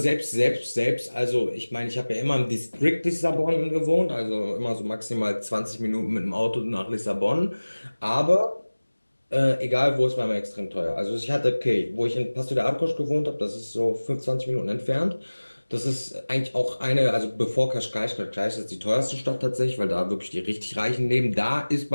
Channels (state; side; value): inverted; both; correlation -1.00